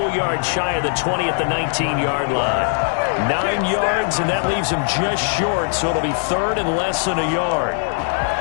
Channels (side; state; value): right; silent; 66 dB below the other